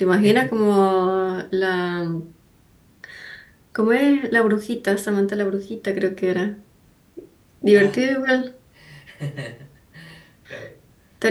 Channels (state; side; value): identical; both; correlation 1.00